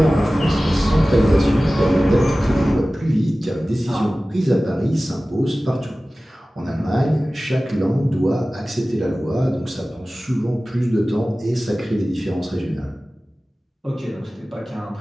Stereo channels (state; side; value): normal; both; correlation 0.97